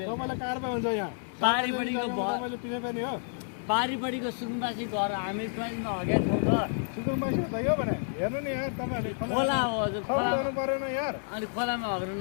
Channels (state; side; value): silent; right; 58 dB below the other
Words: तपाईँलाई कारबाही हुन्छ यहाँ पारिपट्टिको तपाईँले पिछे फेर्ने हो। पारिपट्टिको सुकुम्बासी घर हामी ट्रेनमा हगेको छौँ त सुकुम्बासी हो त यो भने हेर्नु नि यार तपाईँहरूले खोला हो हजुर खोला गर्नु परेन यार। अनि खोलामा हग्न